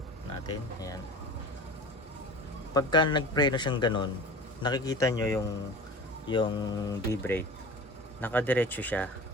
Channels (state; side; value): normal; both; correlation 0.36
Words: natin. Ayan. Pagka nagpreno siyang ganun, nakikita nyo yung B-brake. Nakadiretso siya.